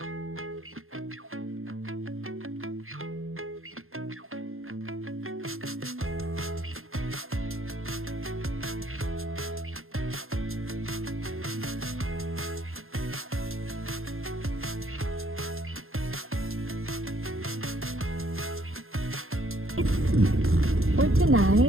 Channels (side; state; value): left; late; 0.61 ms